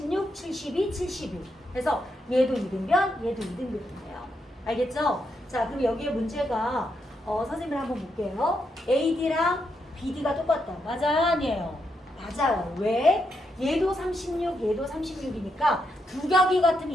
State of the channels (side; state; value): both; normal; correlation 0.81